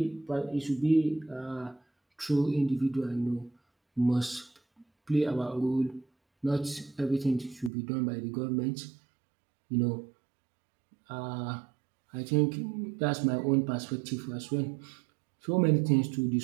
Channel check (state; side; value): drops out; left; at 7.7 s